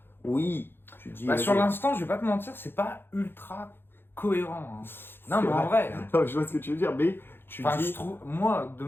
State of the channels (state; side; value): late; right; 0.10 ms